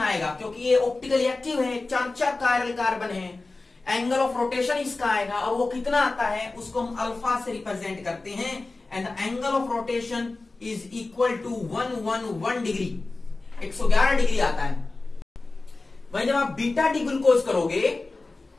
आएगा, क्योंकि ये ऑप्टिकली एक्टिव है, 4 कायरल कार्बन है, एंगल ऑफ रोटेशन इसका आएगा, और वो कितना आता है उसको हम अल्फा से रिप्रेजेंट करते हैं, and the angle of rotation is equal to 111 degree, 111 degree आता है। वहीं जब आप बीटा डी ग्लूकोज करोगे,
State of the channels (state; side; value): quieter; right; 3.4 dB